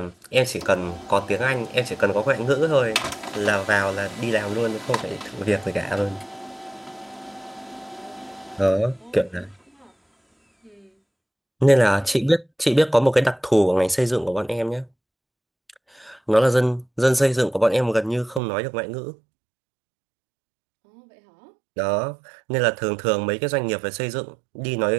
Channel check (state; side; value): drops out; left; at 18.4 s